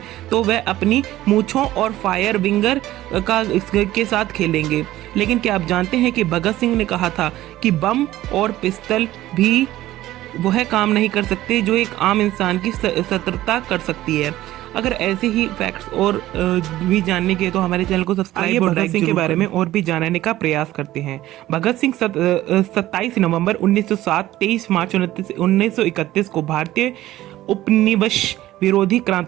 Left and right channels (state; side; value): quieter; left; 15.1 dB